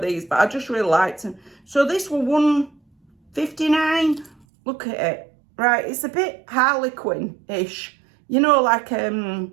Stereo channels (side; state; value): left; drops out; at 4.4 s